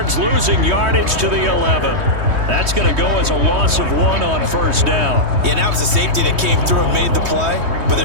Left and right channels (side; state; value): left; late; 3.2 ms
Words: losing yardage to the 11. That's going to go as a loss of 1 on 1st down. Yeah, and that was a safety that came through and made the play. But